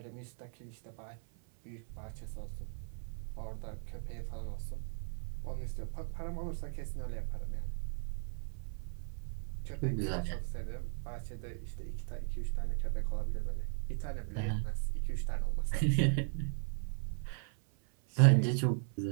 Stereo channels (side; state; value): left; silent; 53 dB below the other